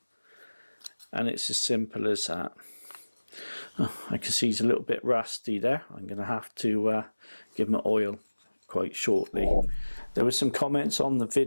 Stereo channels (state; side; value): inverted; both; correlation -1.00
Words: and it's as simple as that. I can see he's a little bit rusty there. I'm going to have to give him an oil quite shortly. There were some comments on the